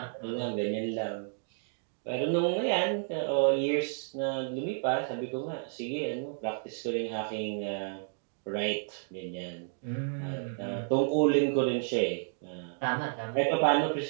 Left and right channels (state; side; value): silent; left; digital silence